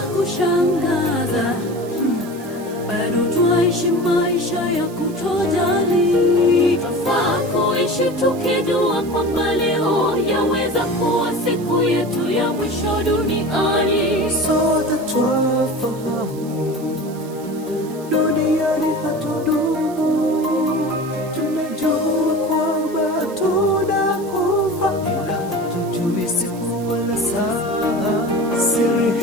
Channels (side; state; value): right; noise; hiss, 21 dB below the sound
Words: kushangaza, bado twaishi maisha ya kutojali. Twafaa kuishi tukijua kwamba leo yaweza kuwa siku yetu ya mwisho duniani. Sote twafahamu duniani hatudumu. Tunajua